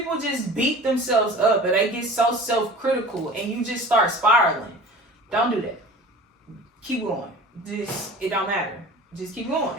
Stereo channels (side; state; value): both; normal; correlation 0.40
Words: just beat themselves up and they get so self-critical and you just start spiraling. Don't do that. Keep going. It don't matter. Just keep going.